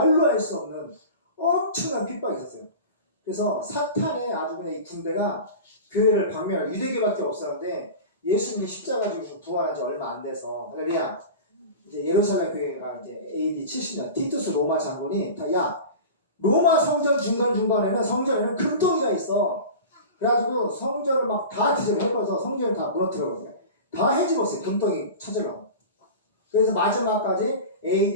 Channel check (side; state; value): both; inverted; correlation -0.33